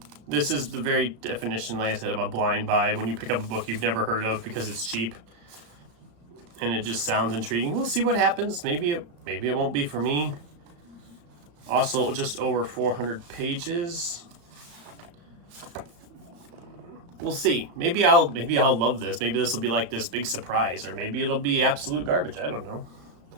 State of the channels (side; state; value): left; late; 35 ms